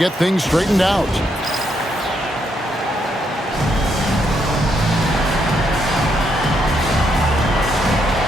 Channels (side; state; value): both; normal; correlation 0.77